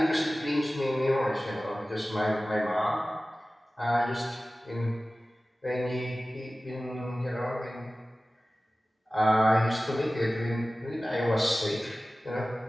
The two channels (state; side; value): normal; both; correlation 0.97